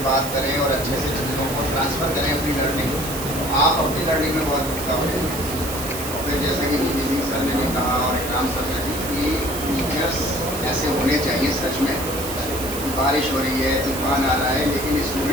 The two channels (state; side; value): noise; right; hiss, 8 dB below the sound